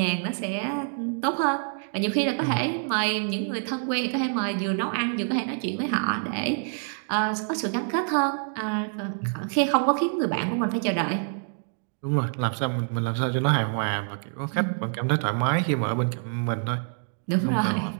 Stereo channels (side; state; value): left; silent; 61 dB below the other